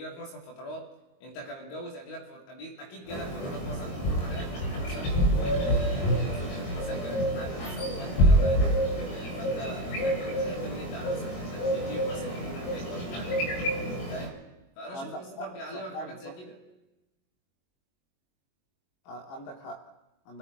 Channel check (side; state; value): right; late; 22 ms